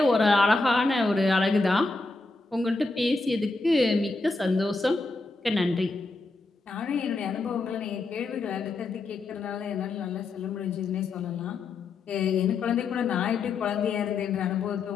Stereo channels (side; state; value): right; quieter; 3.5 dB